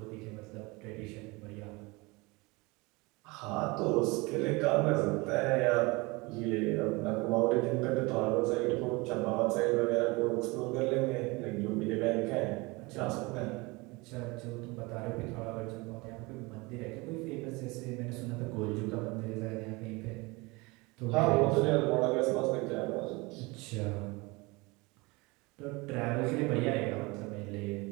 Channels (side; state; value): left; quieter; 24.9 dB